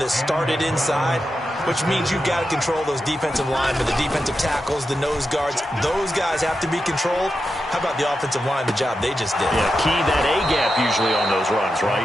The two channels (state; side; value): normal; both; correlation 0.89